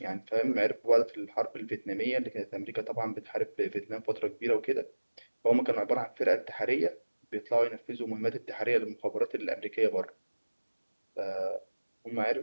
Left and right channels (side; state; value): both; inverted; correlation -1.00